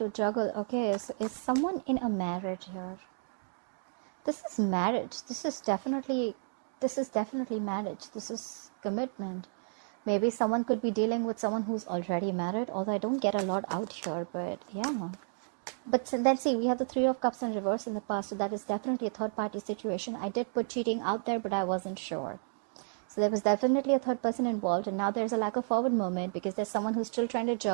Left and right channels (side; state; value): left; silent; 56 dB below the other